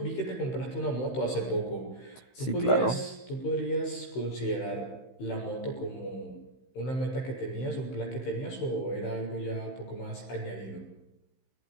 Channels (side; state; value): right; late; 16 ms